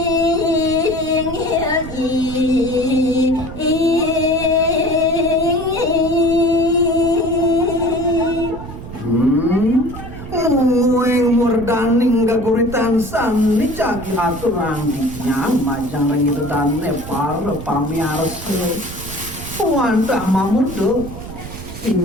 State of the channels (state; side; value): noise; right; rumble, 11 dB below the sound